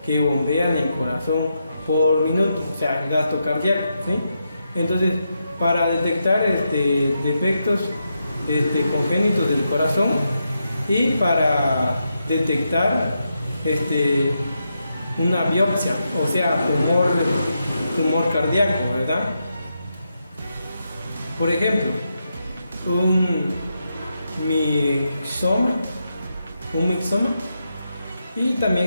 que bombea en el corazón por minuto, o sea, el gasto cardíaco, ¿sí? Entonces, para detectar defectos congénitos del corazón y para detectar una biopsia, o sea, tumor cardíaco, ¿verdad? Por ejemplo, un mixoma, y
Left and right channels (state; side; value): inverted; both; correlation -0.84